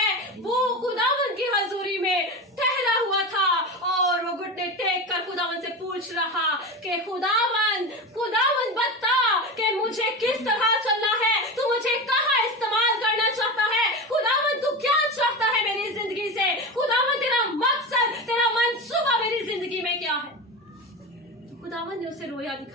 वो खुदावंद की हजूरी में ठहरा हुआ था और वो घुटने टेक कर खुदावंद से पूछ रहा कि खुदावंद बता कि मुझे किस तरह चलना है, तू मुझे कहाँ इस्तेमाल करना चाहता है, खुदावंद तू क्या उसे रोया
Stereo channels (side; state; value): both; normal; correlation 0.23